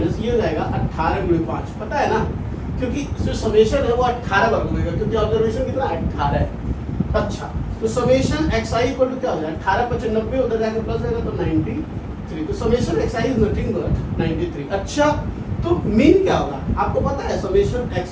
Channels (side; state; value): both; identical; correlation 1.00